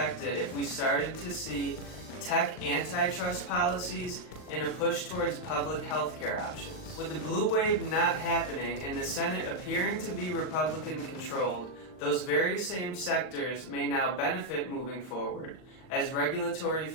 if we started to see tech antitrust policies and a push towards public healthcare options. With the blue wave not happening and the Senate appearing to be Republican controlled, those very same sectors may now benefit moving forward as regulatory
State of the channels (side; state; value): right; late; 38 ms